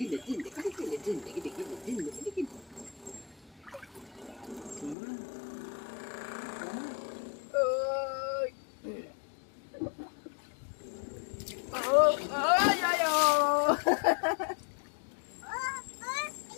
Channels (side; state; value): right; drops out; at 5.0 s